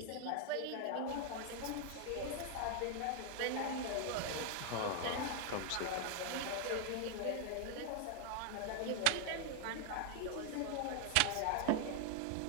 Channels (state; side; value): different; both; correlation 0.00